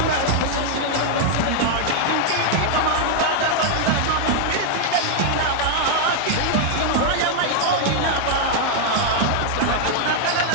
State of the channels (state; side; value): different; both; correlation 0.00